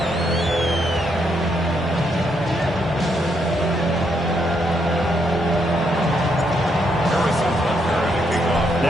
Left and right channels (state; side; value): normal; both; correlation 0.77